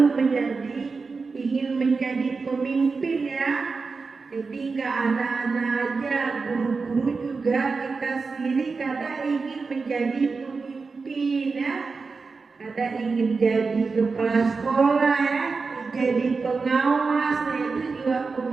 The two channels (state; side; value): quieter; left; 4.5 dB